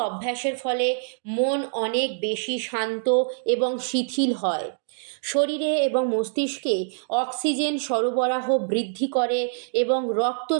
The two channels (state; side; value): silent; left; digital silence